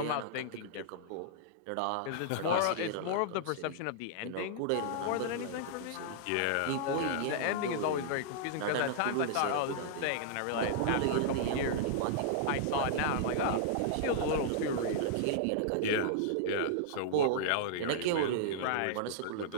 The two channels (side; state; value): both; different; correlation -0.01